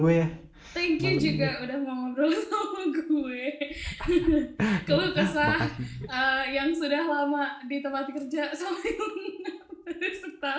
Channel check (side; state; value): both; identical; correlation 1.00